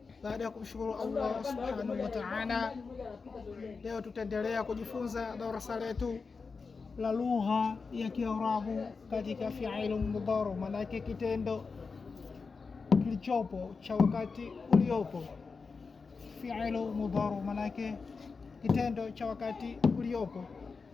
Baada ya kumshukuru Allah subhanahu wa ta'ala, leo tutaendelea kujifunza darasa letu la lugha ya Kiarabu katika fi'il mudhari, maana yake kitendo kilichopo cha wakati uliopo. Fi'il mudhari maana yake kitendo cha wakati uliopo,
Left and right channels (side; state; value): right; quieter; 4.7 dB